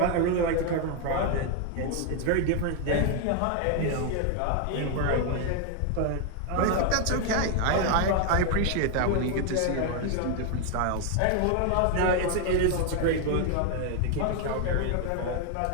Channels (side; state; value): both; different; correlation 0.01